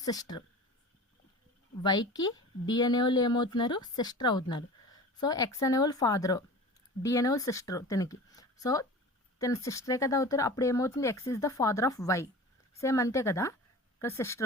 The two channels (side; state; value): both; normal; correlation 0.37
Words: sister. వైకి డి అనేవాళ్ళు ఏమవుతున్నారు, సిస్టర్ అవుతున్నారు. సో ఎక్స్ అనేవాళ్ళు ఫాదరు, డి అనేవాళ్ళు సిస్టరు తినకి. సో తన సిస్టరే కదా అవుతారు. అప్పుడు ఏమవుతుంది, X is the father of Y. Same అంతే కదా, ఇక్కడ